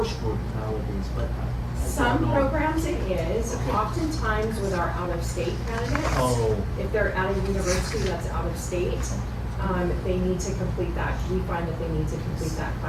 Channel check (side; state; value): both; identical; correlation 1.00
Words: nowadays, but I Some don't know. programs it is, Okay. oftentimes with our out-of-state candidates. Oh. If they're at a university that's out of state, they need to complete that. We find that they need to complete that